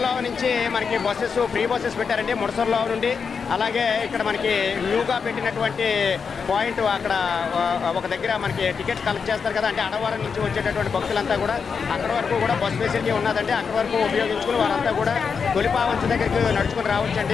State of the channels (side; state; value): right; quieter; 5.9 dB